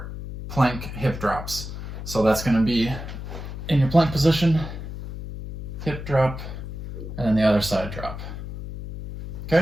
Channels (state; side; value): noise; left; hum, 9 dB below the sound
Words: plank hip drops. So that's gonna be in your plank position, hip drop, and then the other side drop.